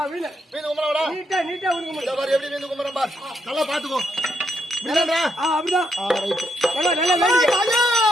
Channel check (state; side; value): normal; both; correlation 0.78